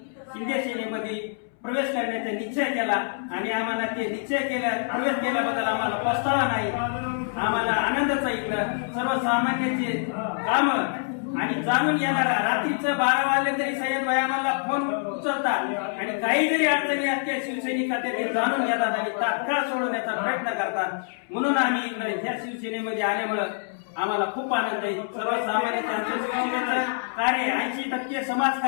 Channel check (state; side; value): silent; right; 61 dB below the other